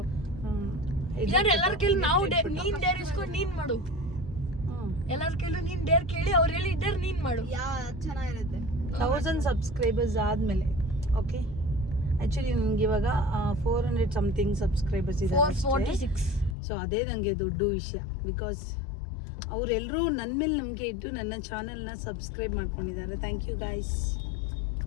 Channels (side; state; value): right; drops out; at 16.6 s